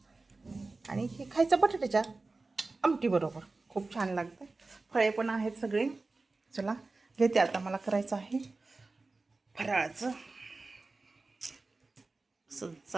आणि हे खायचं बटाट्याच्या आमटी बरोबर, खूप छान लागतं. फळे पण आहेत सगळे. चला घेते आता, मला करायचं आहे फराळाचं. असं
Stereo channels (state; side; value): quieter; left; 3.5 dB